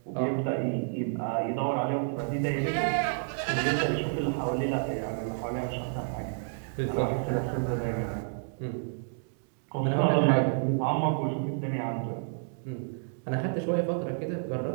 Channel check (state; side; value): silent; left; digital silence